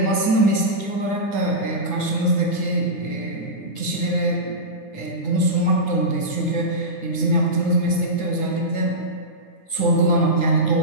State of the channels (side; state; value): right; late; 9.5 ms